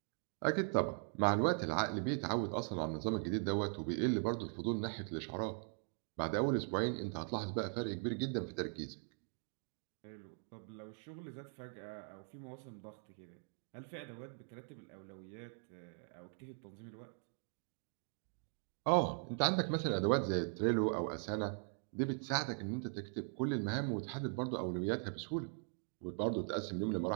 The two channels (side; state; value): left; silent; 51 dB below the other